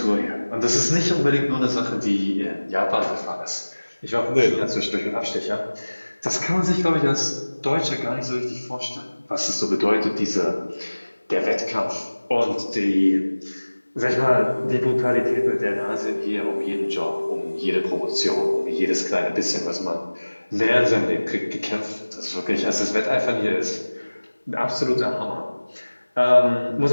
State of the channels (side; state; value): both; inverted; correlation -1.00